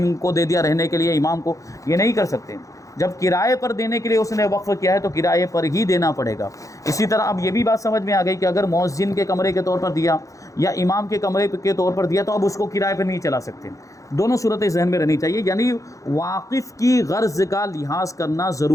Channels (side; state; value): right; late; 0.16 ms